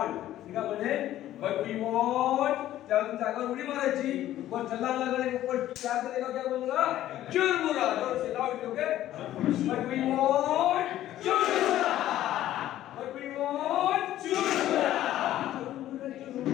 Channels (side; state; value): right; quieter; 13.3 dB